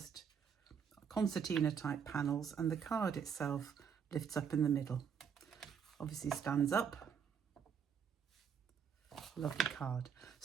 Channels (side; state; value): left; quieter; 7.1 dB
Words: concertina type panels, and the card itself lifts up in the middle, obviously stands up. Lovely card.